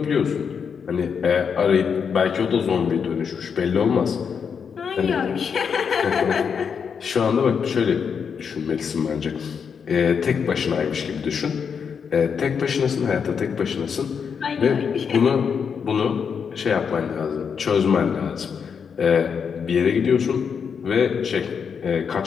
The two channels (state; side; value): quieter; right; 6.6 dB